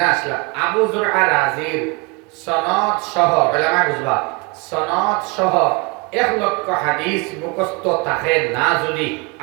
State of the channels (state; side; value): quieter; left; 28.7 dB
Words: আসলা আবু যুরআ রাজির সনদ সহ উলামা বুঝবা সনদ সহ 1 লক্ষ হাদিস মুখস্থ থাকে না যদি